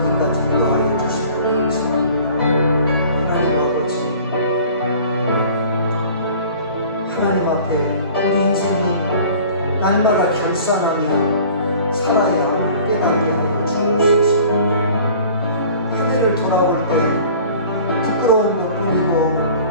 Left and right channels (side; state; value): both; inverted; correlation -0.47